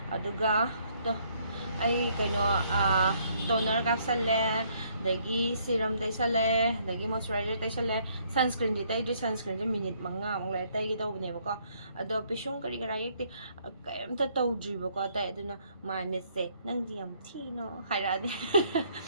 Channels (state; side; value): inverted; both; correlation -0.67